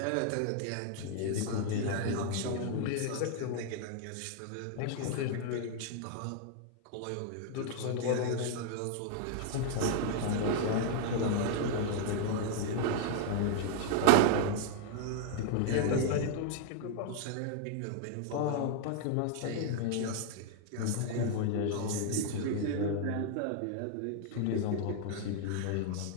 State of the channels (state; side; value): different; both; correlation 0.00